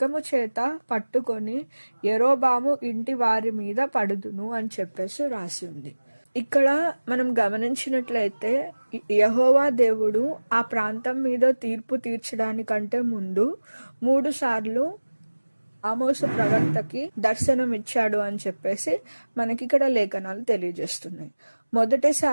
చేత పట్టుకొని యెరోబాము ఇంటి వారి మీద పడుదును అని చెప్పేసి రాసి ఉంది. ఇక్కడ మనం గమనించినట్లయితే యెహోవా దేవుడు ఆ ప్రాంతం మీద తీర్పు తీర్చడానికంటే ముందు 3 సార్లు ఆమోసు ప్రవక్తకి దర్శనం ఇచ్చాడు అని చెప్పేసి మనకి ఇక్కడ లేఖనాలు తెలియజేస్తున్నాయి.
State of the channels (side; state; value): both; inverted; correlation -1.00